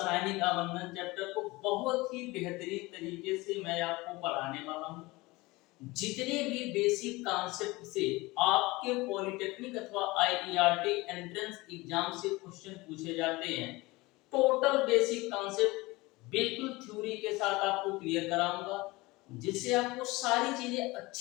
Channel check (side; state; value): right; quieter; 21.9 dB